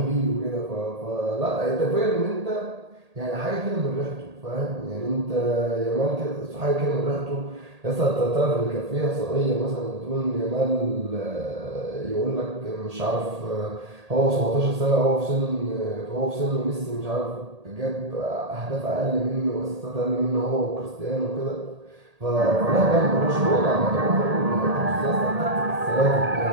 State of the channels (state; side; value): late; left; 1.8 ms